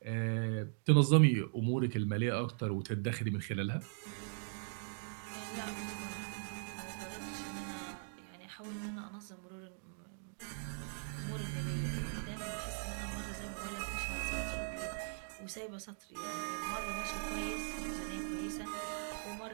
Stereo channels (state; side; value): silent; left; digital silence